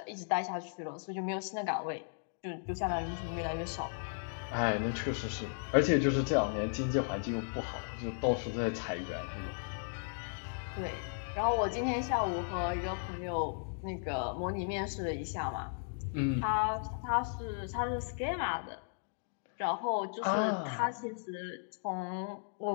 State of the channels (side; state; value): right; silent; digital silence